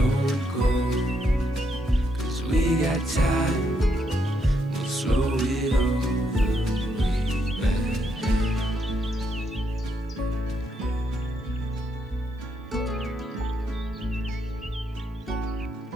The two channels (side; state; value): both; normal; correlation 0.77